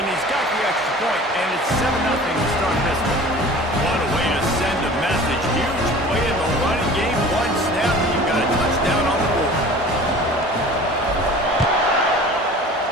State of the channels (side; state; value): both; normal; correlation 0.42